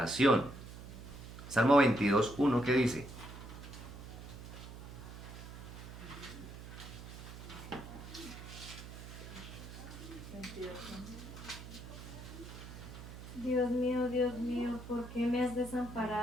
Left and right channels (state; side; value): noise; right; hum, 12 dB below the sound